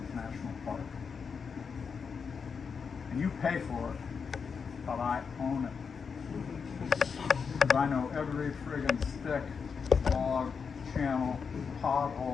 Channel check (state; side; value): quieter; right; 5.9 dB